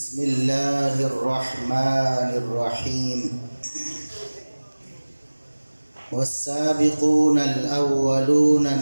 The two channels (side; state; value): both; inverted; correlation -1.00